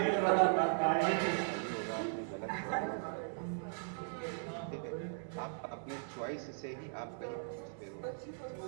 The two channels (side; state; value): left; silent; digital silence